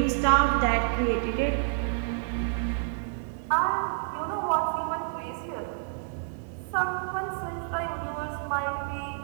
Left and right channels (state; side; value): silent; left; digital silence